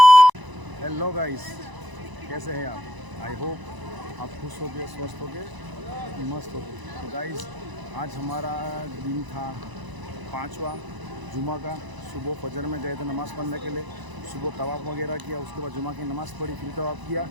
हेलो गाइस, कैसे हैं आप? आई होप आप खुश हो गए, स्वस्थ हो गए, मस्त हो गए। तो गाइस आज हमारा दिन था 5वां जुमा का। सुबह फजर में गए थे नमाज़ पढ़ने के लिए, सुबह तवाफ़ वगैरह किया, उसके बाद जुमा की नमाज़ पढ़ी, फिर तवाफ़ किया,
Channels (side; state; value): left; late; 1.0 ms